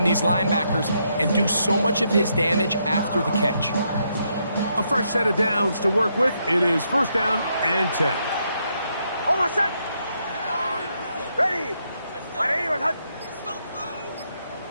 these linebackers and do so much of his damage after the catch. A fresh set of downs to work with. It is first down and 10. Almost set. Ready.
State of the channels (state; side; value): inverted; both; correlation -0.77